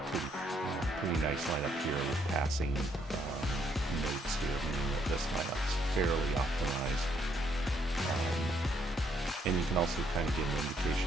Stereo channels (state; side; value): normal; both; correlation 0.71